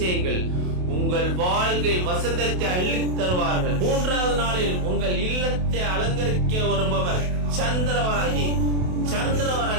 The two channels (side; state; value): left; late; 28 ms